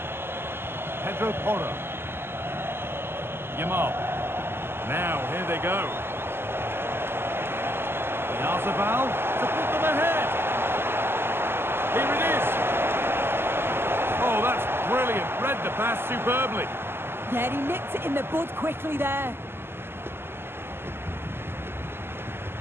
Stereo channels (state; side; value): late; left; 0.11 ms